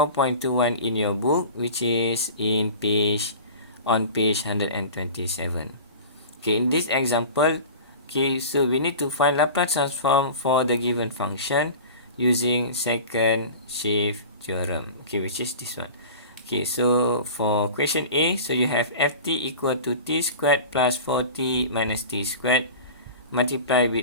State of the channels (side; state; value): both; inverted; correlation -0.36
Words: in your book, which is on page 127. In this example, so we need to find Laplace transform for the given function using second shift theorem, which is this one. So for question A, so you have ft equal to t squared plus 4t minus t squared multiply